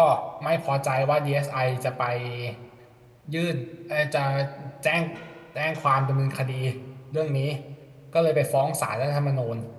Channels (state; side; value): identical; both; correlation 1.00